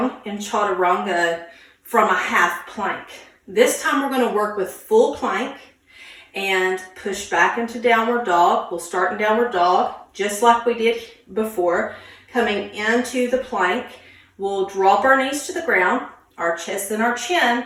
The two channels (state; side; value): identical; both; correlation 1.00